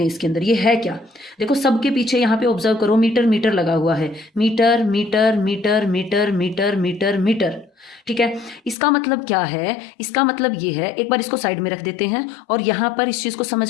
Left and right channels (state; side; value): drops out; right; at 8.8 s